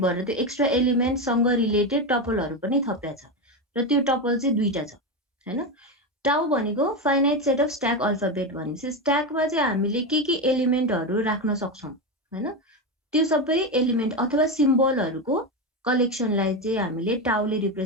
त्यो एक्स्ट्रा एलिमेन्ट सँग रिलेटेड टपलहरु पनि थपिया छ र त्यो टपल चाहिँ दुईटा छ हैन। टाउ भनेको finite set of stack alphabet भनेपछि स्ट्याकमा चाहिँ हामीले के एलिमेन्टहरु राख्न सक्छौं हैन, त्यो सबै एलिमेन्ट अथवा सिम्बलहरुको कलेक्सनलाई चाहिँ हामीले टाउले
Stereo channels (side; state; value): both; normal; correlation 0.14